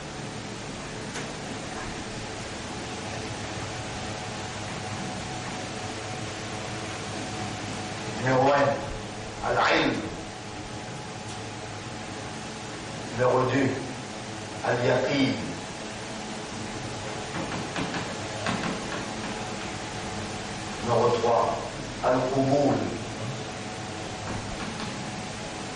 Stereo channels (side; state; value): both; identical; correlation 1.00